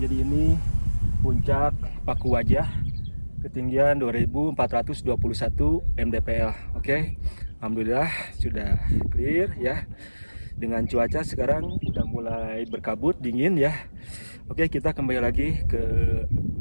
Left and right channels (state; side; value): inverted; both; correlation -1.00